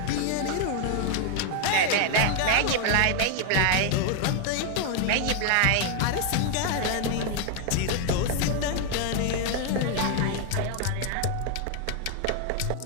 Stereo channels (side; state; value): both; different; correlation 0.00